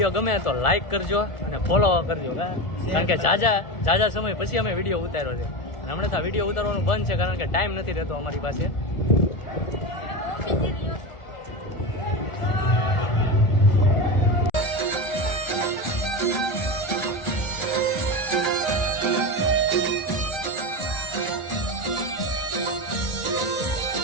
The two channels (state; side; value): late; right; 1.4 ms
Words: ગમે તો લાઈક કરજો અને ફોલો કરજો, કારણ કે જાજા સમય પછી અમે વિડીયો ઉતાર્યો છે. અને હમણાં તો વિડીયો ઉતારવાનું બંધ છે કારણ કે ટાઈમ નથી રહેતો અમારી પાસે.